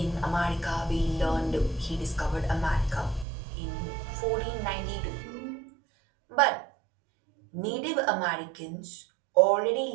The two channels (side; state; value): left; drops out; at 3.2 s